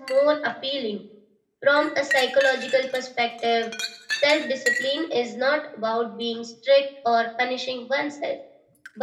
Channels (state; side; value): identical; both; correlation 1.00